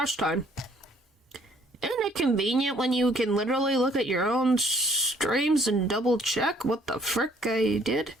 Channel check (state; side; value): normal; both; correlation 0.61